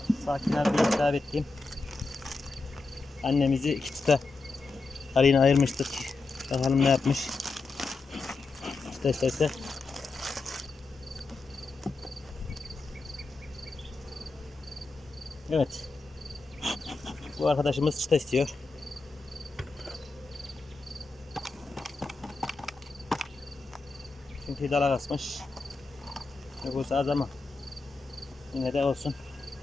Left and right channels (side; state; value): right; quieter; 3.7 dB